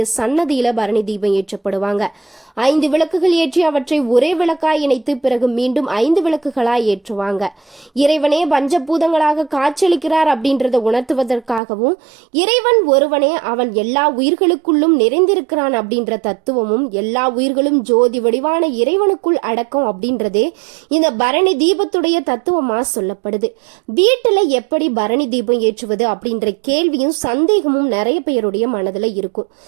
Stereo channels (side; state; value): left; drops out; at 11.6 s